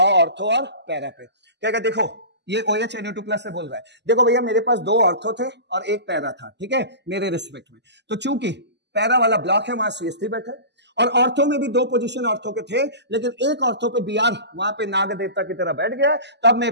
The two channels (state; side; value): late; left; 0.50 ms